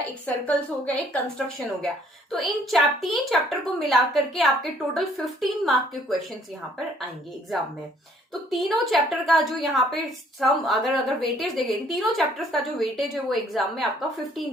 एक सर्कल्स हो गया, एक कंस्ट्रक्शन हो गया। तो इन तीन चैप्टर को मिलाकर के आपके टोटल 15 मार्क के क्वेश्चंस यहाँ पर आएंगे एग्जाम में। तो तीनों चैप्टर का जो यहाँ पे सम अगर वेटेज देखें, तीनों चैप्टर्स का जो वेटेज है वो एग्जाम में आपका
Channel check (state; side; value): normal; both; correlation 0.62